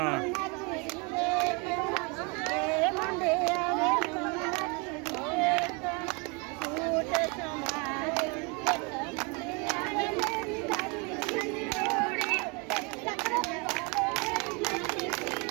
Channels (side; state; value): left; quieter; 30.6 dB